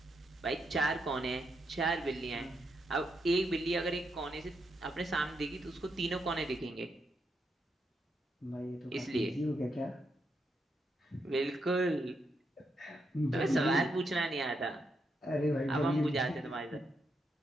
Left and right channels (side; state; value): both; normal; correlation 0.81